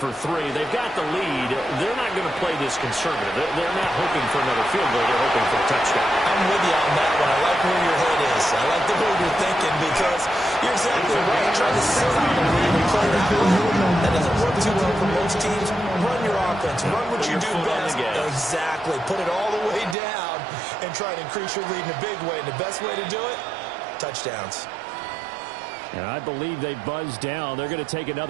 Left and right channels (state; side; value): drops out; left; at 20.0 s